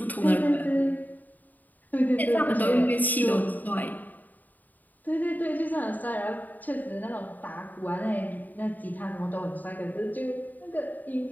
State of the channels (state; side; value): late; right; 0.083 ms